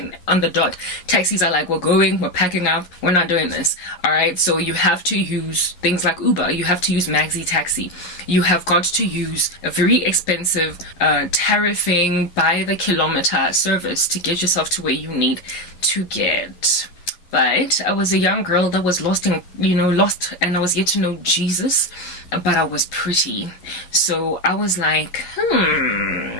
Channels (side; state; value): right; late; 11 ms